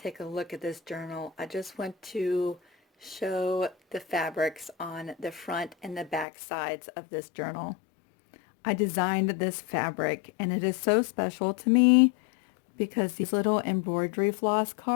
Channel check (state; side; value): drops out; right; at 6.2 s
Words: a look at this journal, I just want to show the fabrics on the front and the back sides of this journal. I designed this fabric, and it is so special to me because these little embroidery floss